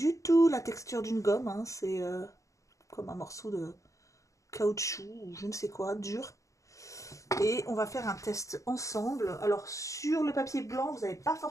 tout la texture d'une gomme. Hein. C'est comme un morceau de caoutchouc ou je ne sais quoi, dur. Et on va faire un test ensemble. Alors sur le papier blanc, vous n'allez pas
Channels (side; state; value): right; late; 0.15 ms